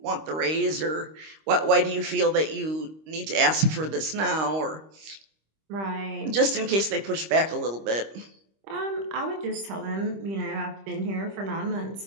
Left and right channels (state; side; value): late; left; 25 ms